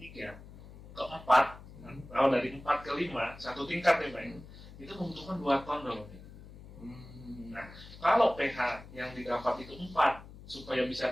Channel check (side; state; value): left; noise; hum, 17 dB below the sound